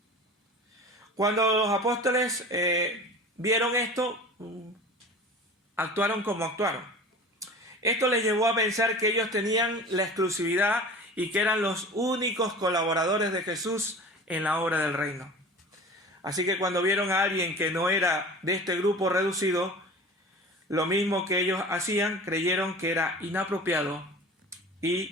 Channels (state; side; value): normal; both; correlation 0.38